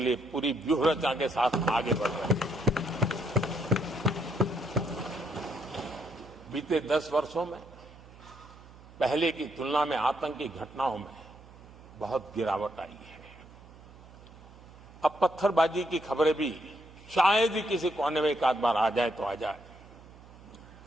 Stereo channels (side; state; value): right; noise; hum, 21 dB below the sound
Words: लिए पूरी व्यूहरचना के साथ आगे बढ़ रहे हैं। बीते 10 वर्षों में पहले की तुलना में आतंकी घटनाओं में बहुत गिरावट आई है। अब पत्थरबाजी की खबरें भी शायद ही किसी कोने में एक आध बार आ जाए तो आ जाए।